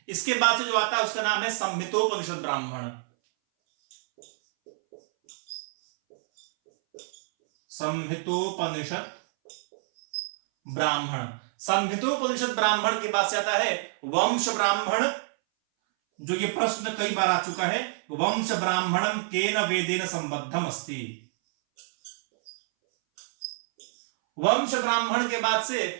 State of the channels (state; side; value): silent; left; 60 dB below the other